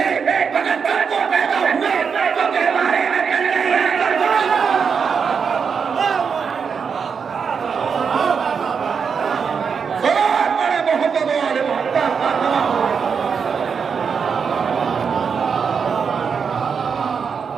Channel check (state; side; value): quieter; left; 6.2 dB